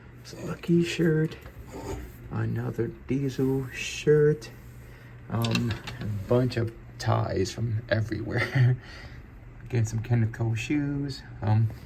It's a Lucky shirt. Another Diesel shirt. A bunch of ties from everywhere. Again, some Kenneth Cole shoes.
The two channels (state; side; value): identical; both; correlation 1.00